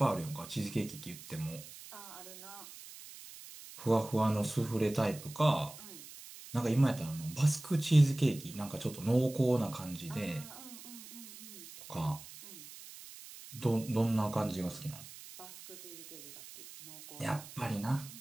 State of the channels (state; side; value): noise; right; hiss, 15 dB below the sound